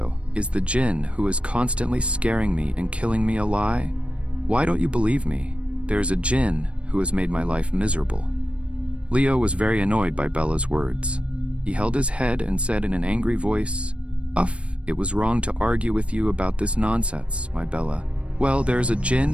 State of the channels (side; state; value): left; late; 0.061 ms